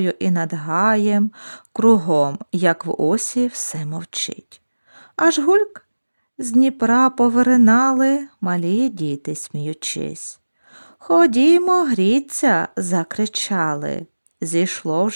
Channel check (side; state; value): both; inverted; correlation -1.00